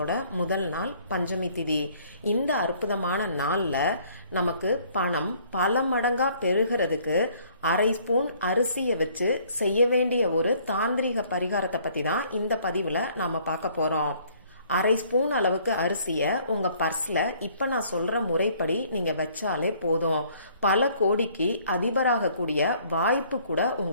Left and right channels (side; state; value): both; inverted; correlation -0.60